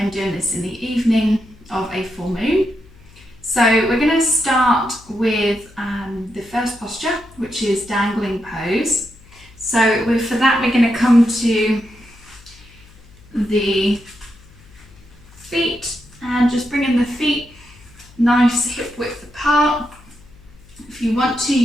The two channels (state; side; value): noise; left; hum, 25 dB below the sound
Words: doing this in the evening of a full moon. So we're going to start with the first posture, which is dangling pose. So for that we're going to come to the feet and just bringing the feet nice hip width apart. If you want to,